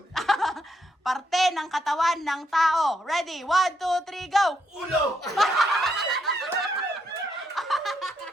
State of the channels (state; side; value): normal; both; correlation 0.78